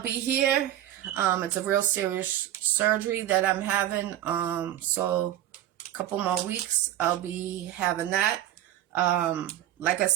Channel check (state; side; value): quieter; left; 12.8 dB